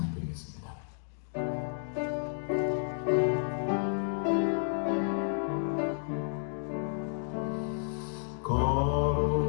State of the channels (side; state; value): right; silent; digital silence